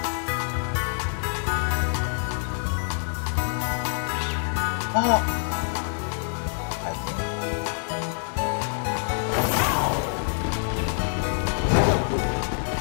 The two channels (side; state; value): right; silent; 61 dB below the other